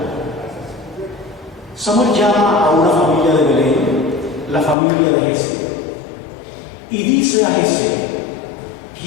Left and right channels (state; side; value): drops out; right; at 4.8 s